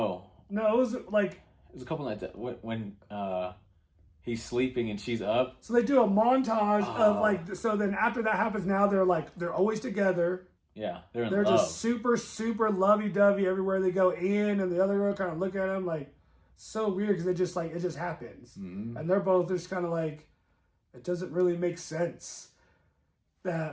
No, it was like, it was a couple nights when he's sleeping and she's up. so they do a montage of Oh. like, so then after that happens, now they're always together. Yeah, they're in They're love. just super, super lovey-dovey everywhere they go in, and the other girl kind of look at him like, so weird because it just happens. Mm-hmm. And they're both just kind of like, it doesn't really make sense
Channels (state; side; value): identical; both; correlation 1.00